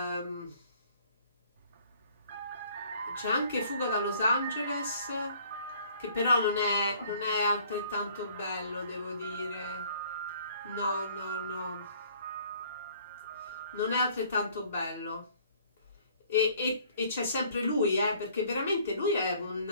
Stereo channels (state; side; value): inverted; both; correlation -0.57